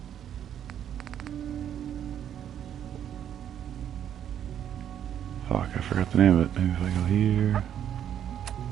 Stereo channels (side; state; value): left; quieter; 9.8 dB